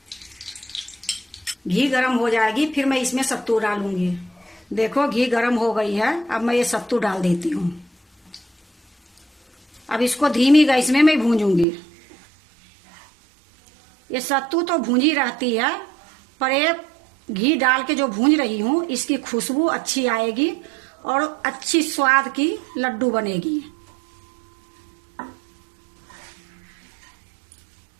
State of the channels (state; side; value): drops out; left; at 11.7 s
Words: घी गरम हो जाएगी फिर मैं इसमें सत्तू डालूंगी। देखो घी गरम हो गई है, अब मैं ये सत्तू डाल देती हूँ। अब इसको धीमी गैस में मैं भूंजूंगी। ये सत्तू तो भूंजी रहती है, पर ये घी डाल के जो भूंज रही हूँ इसकी खुशबू अच्छी आएगी और अच्छी स्वाद की लड्डू बनेगी।